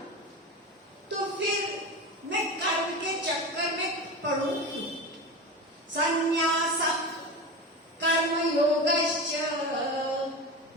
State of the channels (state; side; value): normal; both; correlation 0.26